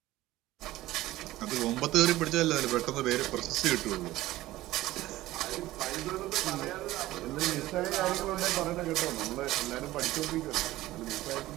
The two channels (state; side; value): quieter; left; 16.5 dB